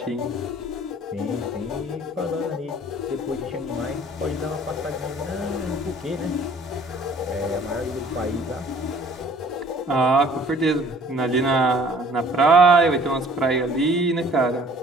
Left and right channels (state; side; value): normal; both; correlation 0.54